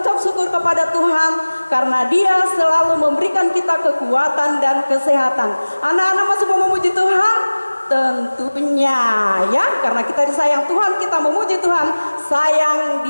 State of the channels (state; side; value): inverted; both; correlation -1.00